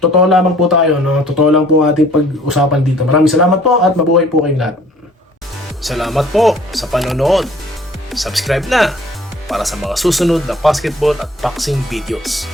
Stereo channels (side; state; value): both; normal; correlation 0.54